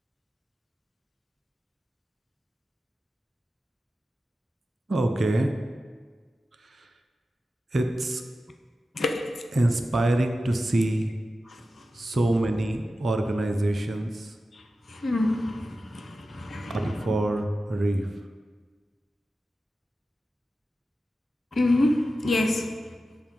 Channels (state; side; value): normal; both; correlation 0.93